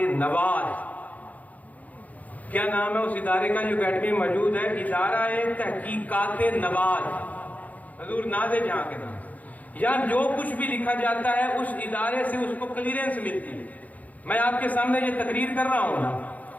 نواز. کیا نام ہے اس ادارے کا جو اکیڈمی میں موجود ہے؟ ادارہ تحقیقات نواز, حضور ناز جہاں کے نام. یہاں جو کچھ بھی لکھا جاتا ہے اس ادارے سے اس کو کلیئرنس ملتی ہے. میں آپ کے سامنے یہ تقریر کر رہا ہوں نا,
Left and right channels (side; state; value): right; late; 0.076 ms